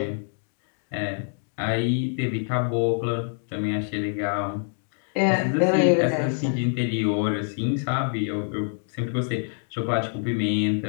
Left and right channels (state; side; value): silent; right; 61 dB below the other